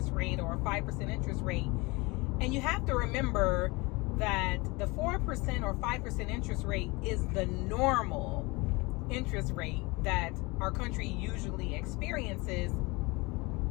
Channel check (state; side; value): quieter; right; 25.1 dB